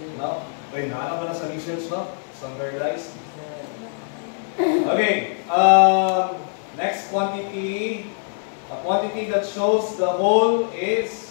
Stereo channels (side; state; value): right; silent; 63 dB below the other